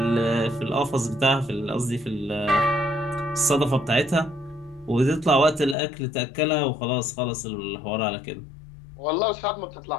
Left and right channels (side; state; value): right; drops out; at 5.8 s